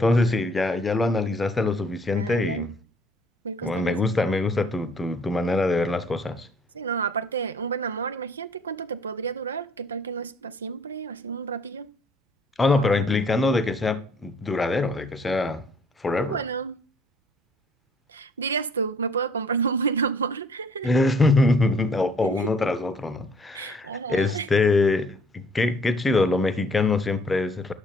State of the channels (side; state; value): both; normal; correlation 0.60